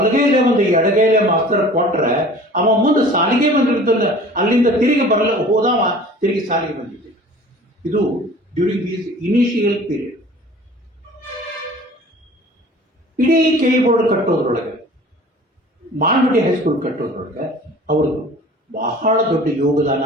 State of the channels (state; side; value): normal; both; correlation 0.45